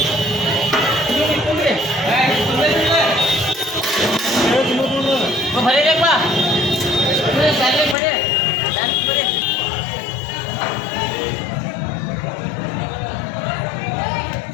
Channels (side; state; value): right; drops out; at 8.0 s